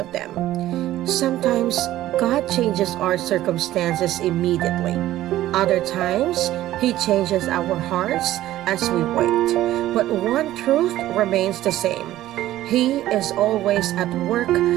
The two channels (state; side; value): quieter; left; 14.4 dB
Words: them. Sometimes, God changes our circumstances immediately. Other times, He changes our hearts as we wait. But one truth remains the same. He is always at work